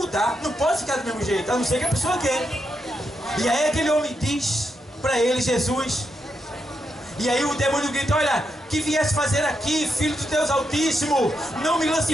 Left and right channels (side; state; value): both; normal; correlation 0.83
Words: Não pode ficar do mesmo jeito, a não ser que a pessoa quer. E aí aquele homem diz para ele, Jesus. E aí o demônio grita, olha, que viesse fazer aqui, filho de Deus Altíssimo, não me